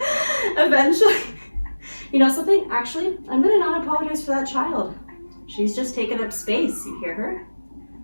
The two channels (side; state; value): both; inverted; correlation -1.00